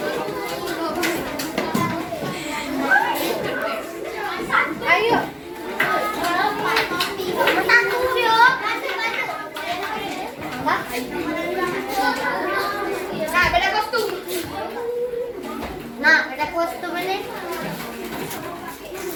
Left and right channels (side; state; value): both; identical; correlation 1.00